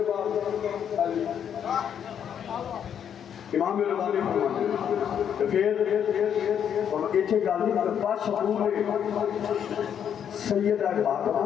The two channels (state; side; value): quieter; right; 8.6 dB